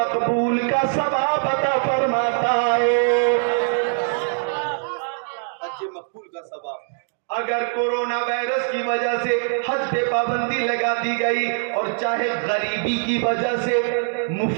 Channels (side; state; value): left; silent; digital silence